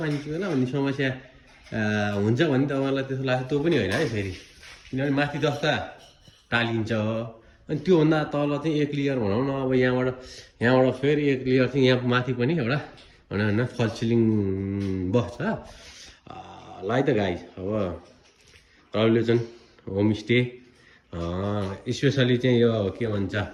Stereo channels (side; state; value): both; identical; correlation 1.00